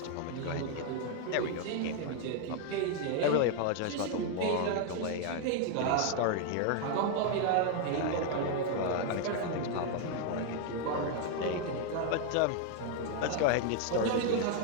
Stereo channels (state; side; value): different; both; correlation 0.00